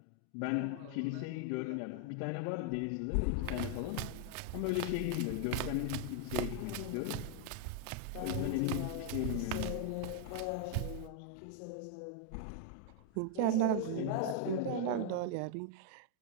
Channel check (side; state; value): both; different; correlation 0.00